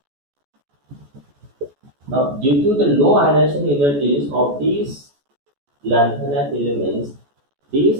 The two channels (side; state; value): left; late; 14 ms